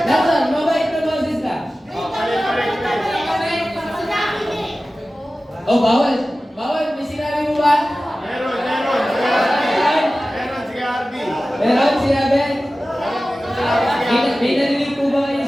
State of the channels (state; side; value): normal; both; correlation 0.96